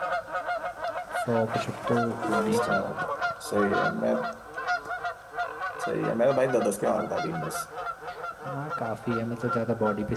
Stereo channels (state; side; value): identical; both; correlation 1.00